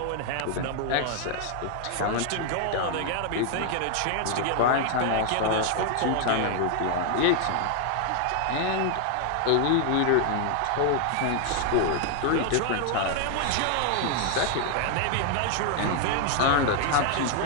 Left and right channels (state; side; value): different; both; correlation 0.00